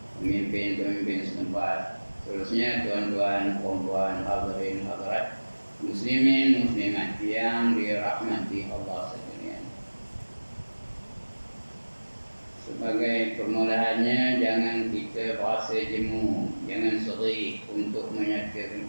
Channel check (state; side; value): inverted; both; correlation -1.00